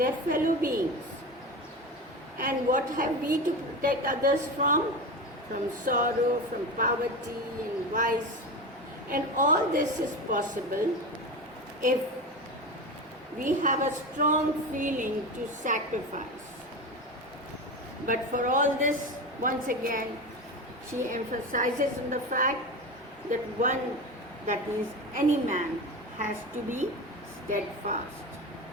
fellow beings? And what have we to protect others from? From sorrow, from poverty and vice. And all this is possible if we have a strong feeling to sacrifice. But for all this, once again, she emphasizes on the fact that one, that is any man, has to be steadfast,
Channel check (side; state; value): both; normal; correlation 0.24